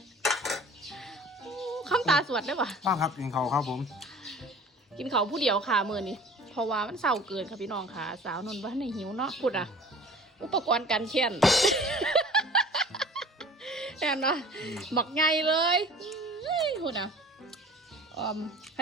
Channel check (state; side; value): normal; both; correlation 0.45